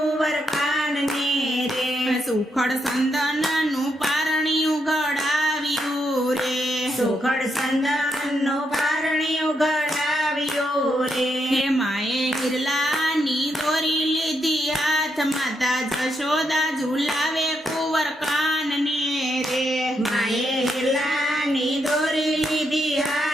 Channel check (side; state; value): both; normal; correlation 0.80